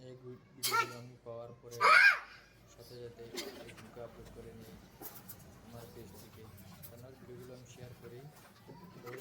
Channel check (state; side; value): identical; both; correlation 1.00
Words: এই ভিডিওগুলো আমি পাওয়ার পরে সাথে সাথে ফেসবুকে আপলোড করে নিই আমার পেজ থেকে। আপনার ভিডিওগুলো আমি শেয়ার করি,